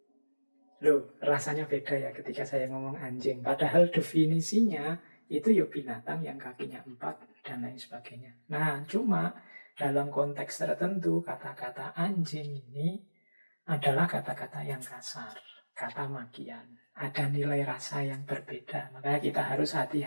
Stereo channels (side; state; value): both; inverted; correlation -1.00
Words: Loh, rasanya beda ya ketika saya ngomong anjing. Padahal definisinya itu ya binatang yang kakinya 4 dan lain sebagainya. Nah, cuma dalam konteks tertentu kata-kata anjing ini adalah kata-kata yang kasar, kata makian. Ada nilai rasa yang berbeda, makanya kita harus